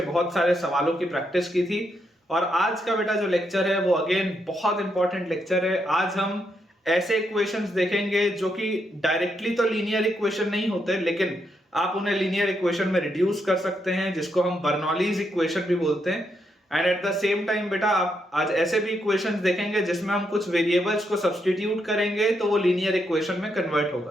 बहुत सारे सवालों की प्रैक्टिस की थी। और आज का बेटा जो लेक्चर है वो अगेन बहुत इंपॉर्टेंट लेक्चर है। आज हम ऐसे इक्वेशंस देखेंगे जो कि डायरेक्टली तो लीनियर इक्वेशन नहीं होते, लेकिन आप उन्हें लीनियर इक्वेशन में रिड्यूस कर सकते हैं, जिसको हम बर्नौलीज इक्वेशन भी बोलते हैं। And at the same time बेटा आप आज ऐसे भी इक्वेशंस देखेंगे जिसमें हम कुछ वेरिएबल्स को सब्स्टिट्यूट करेंगे तो वो लीनियर इक्वेशन में कन्वर्ट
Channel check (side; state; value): both; normal; correlation 0.79